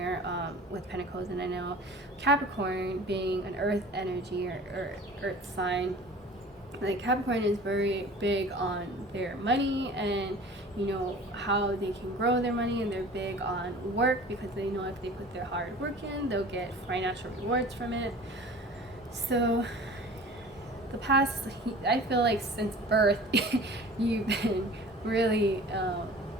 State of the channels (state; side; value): normal; both; correlation 0.43